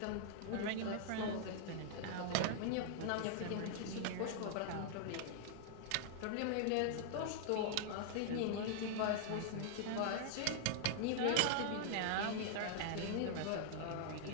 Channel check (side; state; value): both; different; correlation -0.01